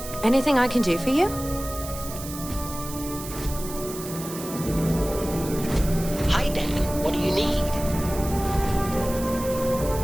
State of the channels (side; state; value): right; noise; hiss, 11 dB below the sound